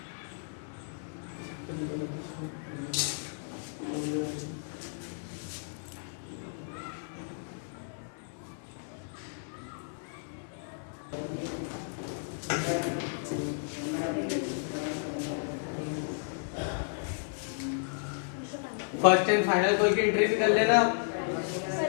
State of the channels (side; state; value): right; silent; digital silence